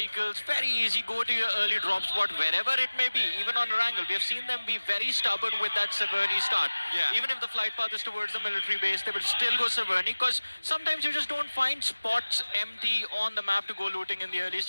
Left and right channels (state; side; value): inverted; both; correlation -1.00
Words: very easy, go to your early drop spot, wherever it may be, even on Wrangle. We have seen them be very stubborn with that Severny start. Yeah. Even if the flight path is towards the military base, they will still go Severny because sometimes you just don't find spots empty on the map to go looting in the early